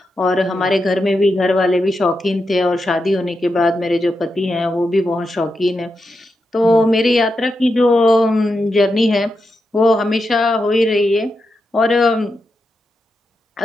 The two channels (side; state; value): both; normal; correlation 0.87